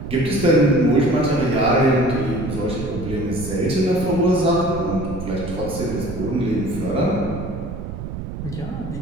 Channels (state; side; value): noise; right; rumble, 8 dB below the sound